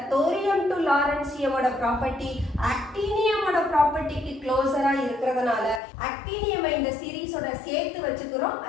தோரியம் டு லாரன்சியமோட ப்ராப்பர்ட்டி ஆக்டினியமோட ப்ராப்பர்ட்டிக்கு க்ளோசரா இருக்கிறதுனால ஆக்டினியமை இந்த சீரிஸோட சேர்த்து வச்சுக்கிறோம்.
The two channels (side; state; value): right; drops out; at 5.8 s